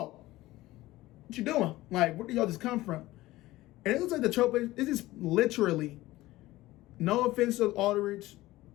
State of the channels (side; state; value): right; quieter; 17.6 dB